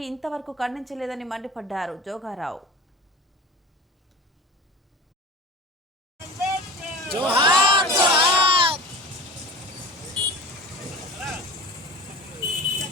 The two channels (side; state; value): both; normal; correlation 0.35